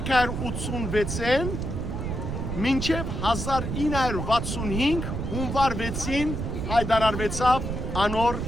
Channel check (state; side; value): noise; right; rumble, 3 dB below the sound